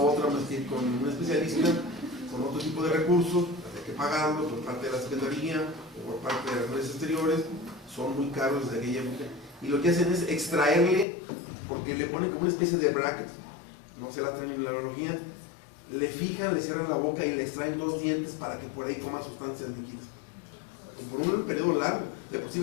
otra más que ir con un especialista, con otro tipo de recursos, hay que pagarlo por parte de la Secretaría o por parte de las redes exteriores, son muy caros desde aquella época. Y lo que hacen es extraerle, porque le ponen como una especie de bracket, no sé la terminología, le fijan, le cierran la boca y le extraen 2 dientes para que por ahí coma sustancias líquidas. Por un periodo largo, de por sí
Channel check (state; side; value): drops out; right; at 11.1 s